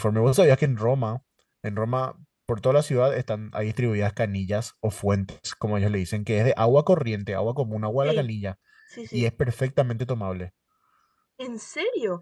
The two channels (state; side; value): identical; both; correlation 1.00